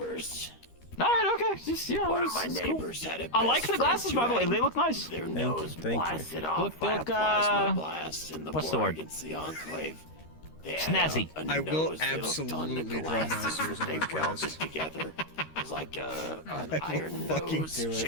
All right, okay. Just, you know, One of my it's cool. neighbors had a I like best the glasses, friend by the who way. had They look nice. Their Thank nose you. blasted off Look, by a look, plasma blast in the what's the war word? against the Enclave. They Snazzy. had a I will nose that looked on the absolutely draw glasses masters that on they the welded cast. together. It was like an I will iron fucking nose do it.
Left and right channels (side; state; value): right; late; 13 ms